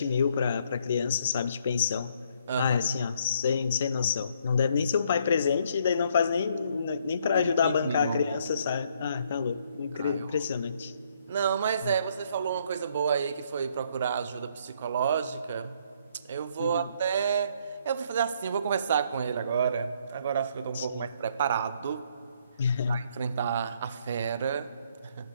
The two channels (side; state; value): both; inverted; correlation -0.68